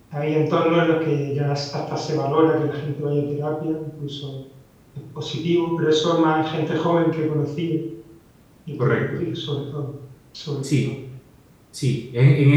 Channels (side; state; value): both; identical; correlation 1.00